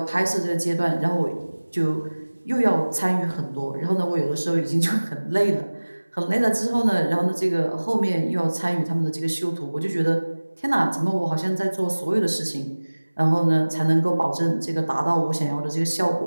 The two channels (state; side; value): inverted; both; correlation -1.00